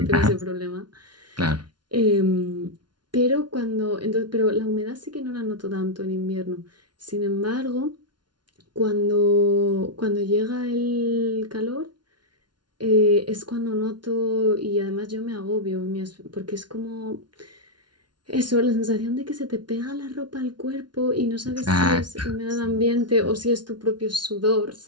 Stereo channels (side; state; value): left; late; 0.70 ms